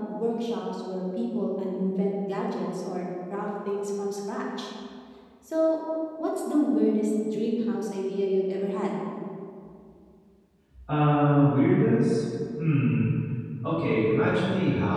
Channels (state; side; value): identical; both; correlation 1.00